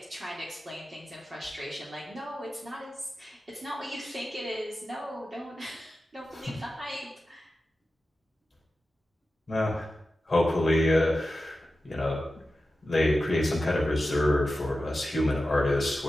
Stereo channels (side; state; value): both; normal; correlation 0.93